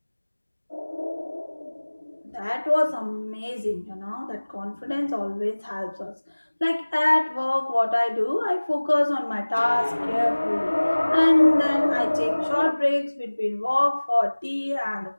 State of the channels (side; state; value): both; inverted; correlation -1.00